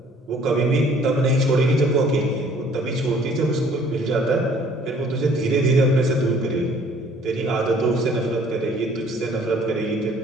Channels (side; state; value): both; normal; correlation 0.57